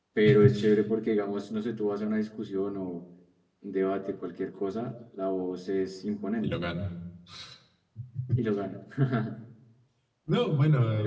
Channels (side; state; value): both; identical; correlation 1.00